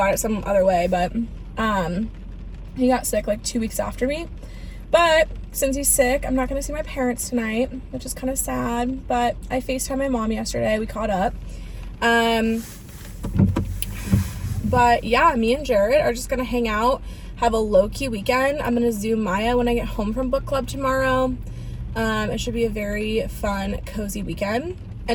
it some other way, but he got sick like 2 weeks after me. But since he's sick, I'm not gonna see my parents tonight, which is kind of sad. But I FaceTimed my mom yesterday. We caught up. But yeah, me and Jared are just gonna hang out, have a low-key weekend. I'm gonna Zoom Maya when I get home from book club tomorrow. It should be a very fun, cozy weekend.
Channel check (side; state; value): both; identical; correlation 1.00